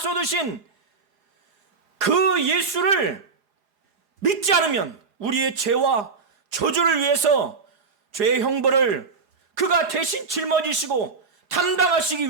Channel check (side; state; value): left; quieter; 4.7 dB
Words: 그 예수를 믿지 않으면 우리의 죄와 저주를 위해서 죄의 형벌을 그가 대신 짊어지시고 담당하시기